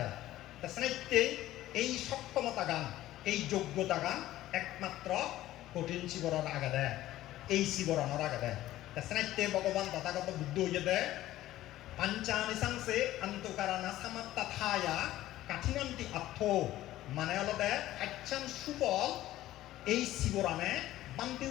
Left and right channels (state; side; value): quieter; right; 14.8 dB